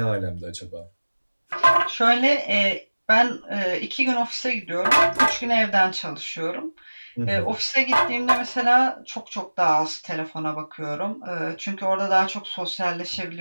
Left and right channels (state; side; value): inverted; both; correlation -1.00